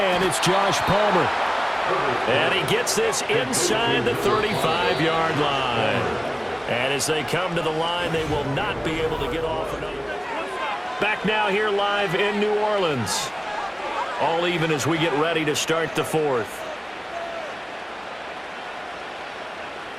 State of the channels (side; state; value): both; identical; correlation 1.00